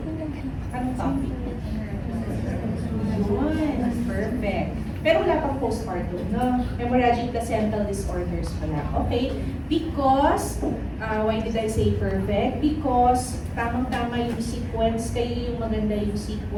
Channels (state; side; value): identical; both; correlation 1.00